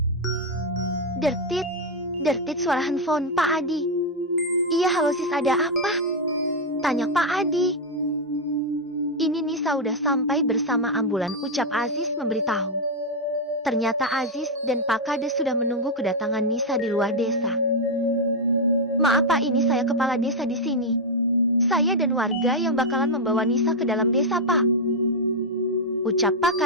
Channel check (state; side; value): normal; both; correlation 0.00